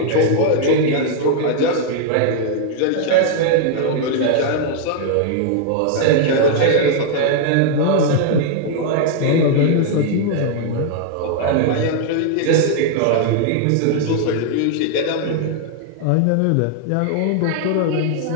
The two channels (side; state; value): both; different; correlation 0.00